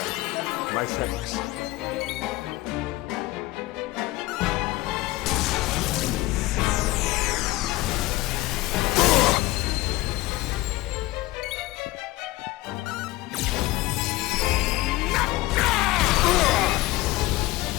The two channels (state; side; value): quieter; right; 18.8 dB